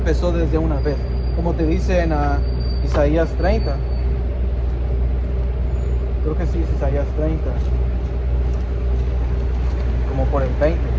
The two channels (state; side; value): identical; both; correlation 1.00